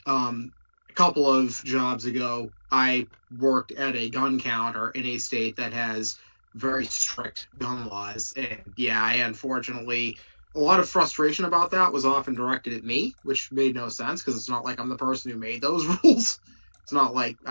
A couple of jobs ago, I worked at a gun counter in a state that has very strict gun laws, and yeah, I unfortunately a lot of frustration about that was often directed at me, which made no sense because it's not like I'm the person who made those rules. It's not like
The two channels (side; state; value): both; inverted; correlation -1.00